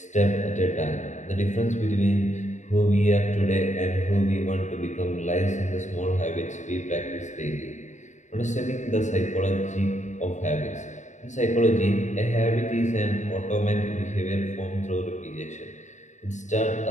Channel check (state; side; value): late; right; 0.35 ms